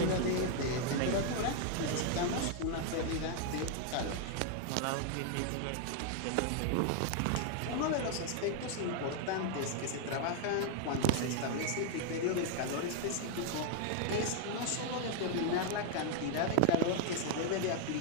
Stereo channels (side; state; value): both; different; correlation 0.00